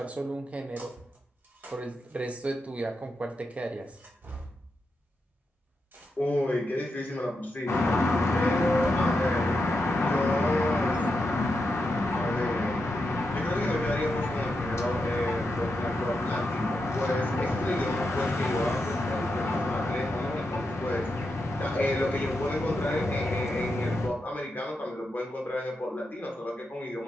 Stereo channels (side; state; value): both; normal; correlation 0.86